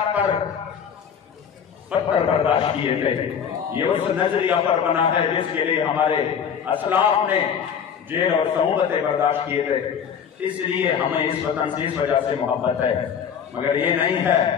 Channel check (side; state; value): right; quieter; 7.6 dB